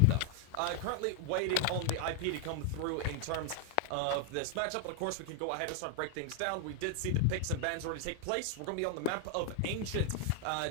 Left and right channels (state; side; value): different; both; correlation 0.00